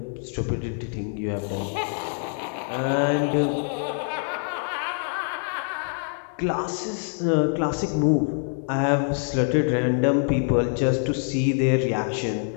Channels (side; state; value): right; silent; 58 dB below the other